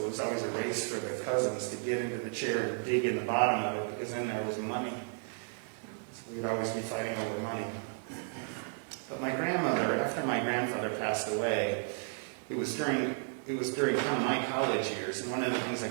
was always a race for the cousins to get into the chair and dig in the bottom of it, because in there was money. So we'd always be fighting over money. But my grandmother, after my grandfather passed away, it was during kind of my college years, and one of the things I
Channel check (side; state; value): left; silent; 56 dB below the other